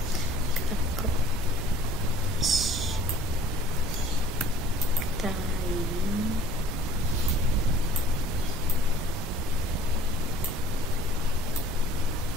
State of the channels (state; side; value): normal; both; correlation 0.52